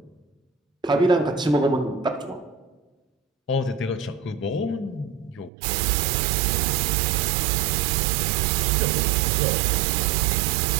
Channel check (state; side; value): drops out; left; at 5.5 s